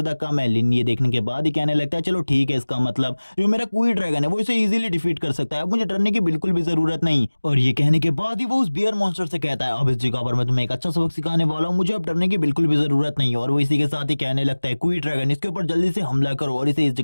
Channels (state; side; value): inverted; both; correlation -1.00